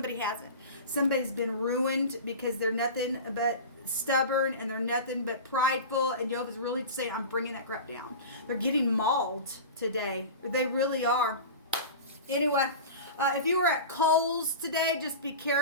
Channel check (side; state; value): both; inverted; correlation -0.31